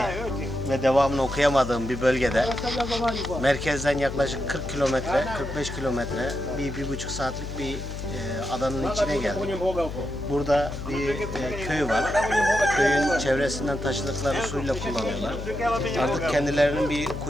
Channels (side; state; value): left; noise; hum, 8 dB below the sound